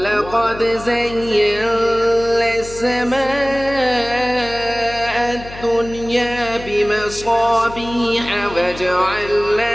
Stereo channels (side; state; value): left; noise; hum, 15 dB below the sound